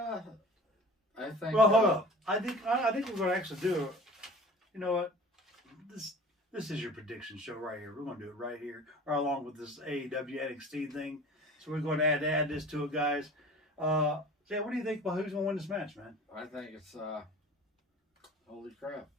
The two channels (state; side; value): normal; both; correlation 0.42